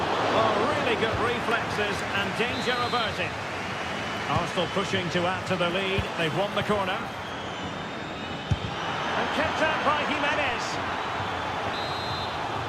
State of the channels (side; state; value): both; identical; correlation 1.00